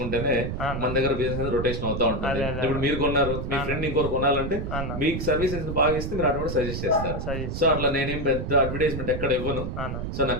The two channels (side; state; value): right; noise; rumble, 4 dB below the sound